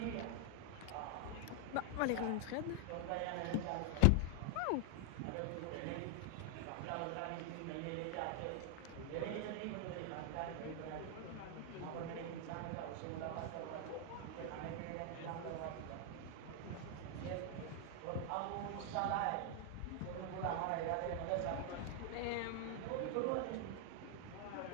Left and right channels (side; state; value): both; different; correlation 0.00